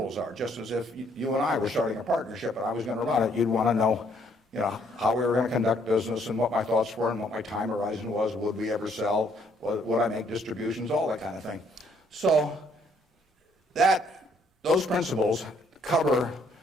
are. Just as if you and I were starting a partnership and I was going to run it, you'd want to know, how we were going to conduct business and what my thoughts were and what my time horizon was. Would we ever sell? Would I make distributions? All that kind of thing. So those principles cover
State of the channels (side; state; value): both; normal; correlation 0.67